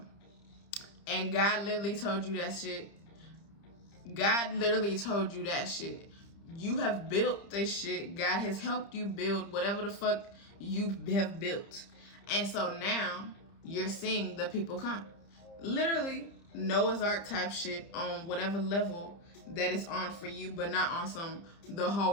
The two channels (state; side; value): late; right; 30 ms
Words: And God literally told you that shit. God literally told you that shit. You have built this shit. God has helped you build whatever the fuck you have built. And so now you're seeing the people come. Literally Noah's Ark type shit on whatever level that is on for you, but not on some the